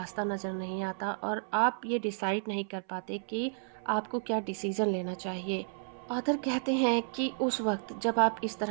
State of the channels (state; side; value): silent; left; 56 dB below the other